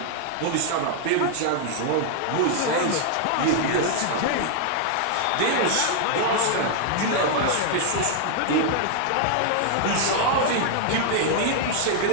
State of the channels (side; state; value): both; different; correlation -0.01